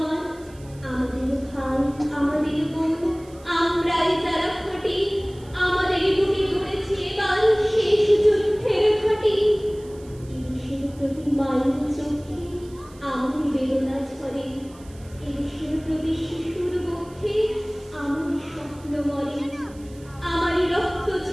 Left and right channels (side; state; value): right; noise; hiss, 25 dB below the sound